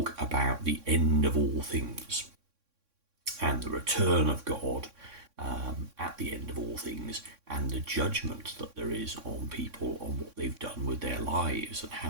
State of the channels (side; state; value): left; late; 3.6 ms